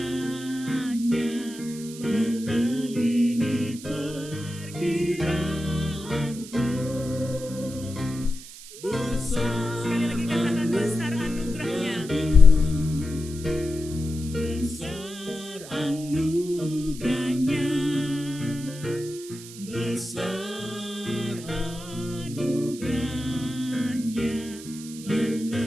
melebihi perkiraanku. Besar, sekali lagi katakan besar anugerahnya, besar anugerahnya, besar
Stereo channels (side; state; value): right; noise; hiss, 15 dB below the sound